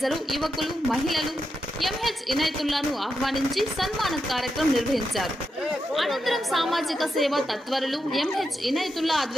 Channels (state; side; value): normal; both; correlation 0.86